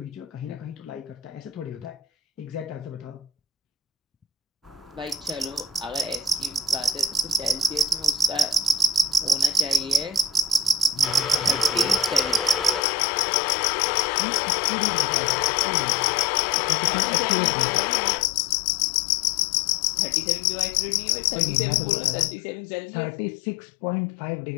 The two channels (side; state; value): right; drops out; at 12.9 s